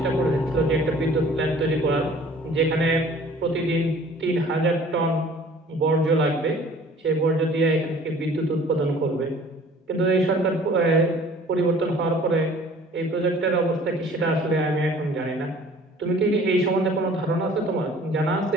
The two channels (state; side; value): normal; both; correlation 0.50